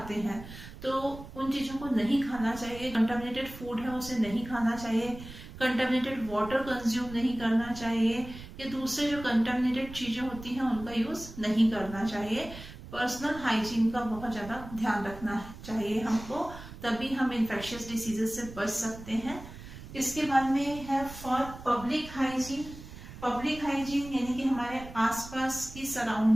हैं, तो उन चीजों को नहीं खाना चाहिए। कंटामिनेटेड फूड है उसे नहीं खाना चाहिए, कंटामिनेटेड वाटर कंज्यूम नहीं करना चाहिए, या दूसरे जो कंटामिनेटेड चीजें होती हैं उनका यूज नहीं करना चाहिए। पर्सनल हाइजीन का बहुत ज्यादा ध्यान रखना चाहिए हमको, तभी हम इन्फेक्शियस डिसीजेस से बच सकते हैं। इसके बाद में है for public hygiene. Public hygiene यानी कि हमारे आसपास की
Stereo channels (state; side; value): noise; right; rumble, 14 dB below the sound